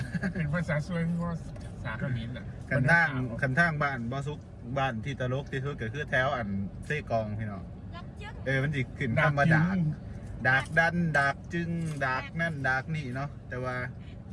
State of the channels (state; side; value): identical; both; correlation 1.00